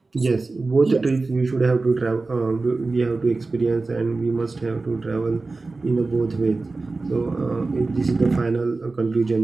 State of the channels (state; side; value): quieter; left; 3.6 dB